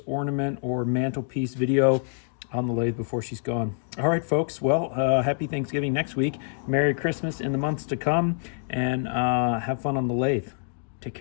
ornament or mantelpiece video on the lathe before she's gone. All right, folks. Well, happy Thanksgiving next week. Merry Christmas in the months to come, and have fun on the lathe. Take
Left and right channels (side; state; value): right; silent; digital silence